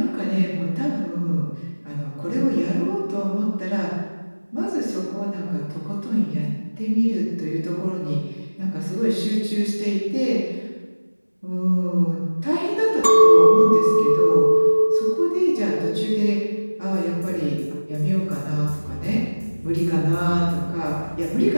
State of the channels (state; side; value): inverted; both; correlation -1.00